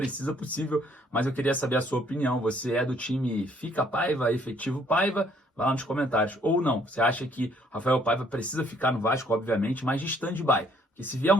possível, mas eu queria saber a sua opinião. Você é do time fica Paiva, efetivo Paiva? Vai lá nos comentários. Ou não, você acha que Rafael Paiva precisa ficar no Vasco, obviamente, mas de stand-by? Porque se vier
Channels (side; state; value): both; normal; correlation 0.64